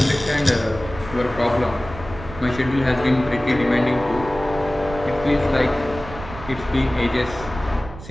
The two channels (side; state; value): right; noise; rumble, 13 dB below the sound